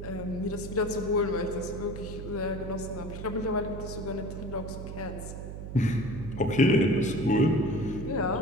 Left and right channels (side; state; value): right; noise; hum, 8 dB below the sound